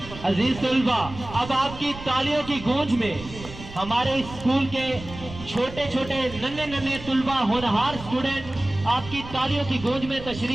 अजीज तलबा अब आपकी तालियों की गूंज में हमारे स्कूल के छोटे छोटे नन्हे नन्हे तुलबा होनहार स्टूडेंट आपकी तालियों की गूंज में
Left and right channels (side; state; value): right; noise; rumble, 14 dB below the sound